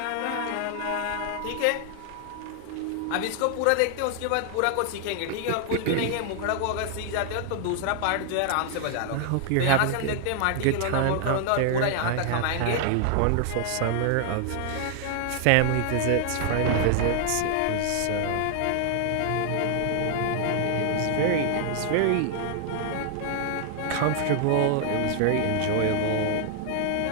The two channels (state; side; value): different; both; correlation 0.00